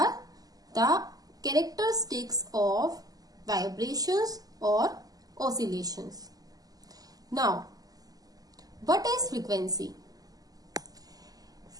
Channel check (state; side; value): late; left; 0.18 ms